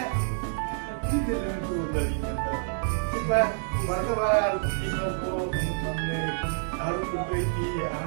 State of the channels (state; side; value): silent; left; 59 dB below the other